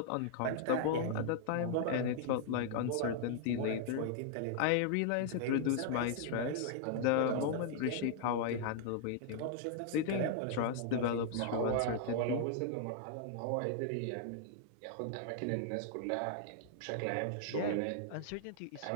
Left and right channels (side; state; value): both; different; correlation -0.01